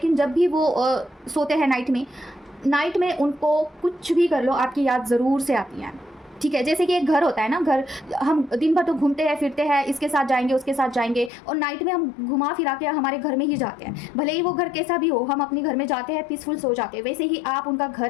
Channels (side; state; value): right; drops out; at 11.3 s